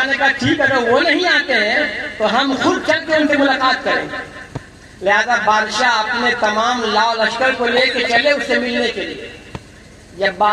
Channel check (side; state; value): both; identical; correlation 1.00